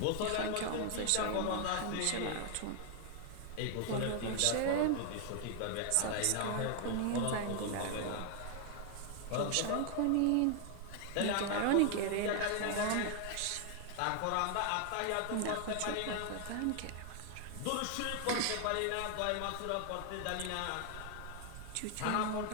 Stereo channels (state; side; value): different; both; correlation 0.00